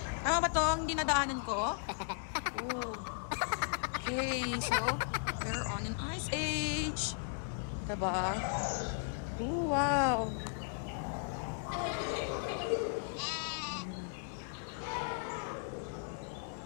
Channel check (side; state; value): right; silent; 54 dB below the other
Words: Tama ba to ang dinadaanan ko? Ooh. Okay, so we're on an ice age. Diba? Ooh, wow.